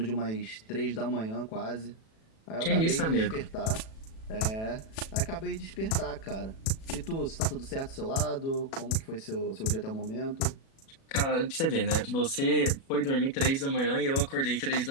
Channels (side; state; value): right; late; 37 ms